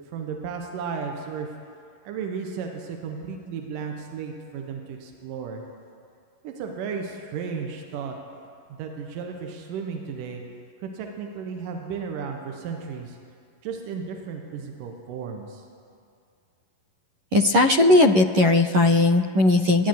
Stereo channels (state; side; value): late; left; 11 ms